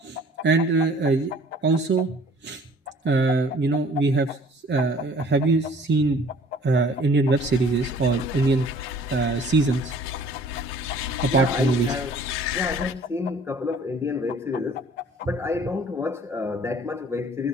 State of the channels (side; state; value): both; normal; correlation 0.52